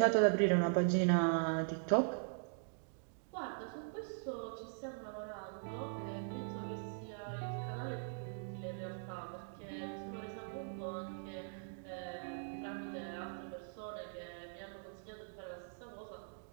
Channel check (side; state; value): left; silent; digital silence